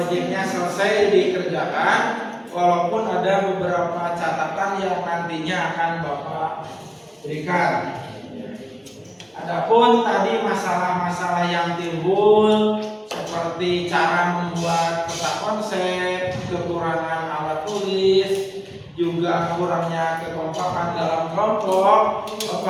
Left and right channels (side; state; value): both; identical; correlation 1.00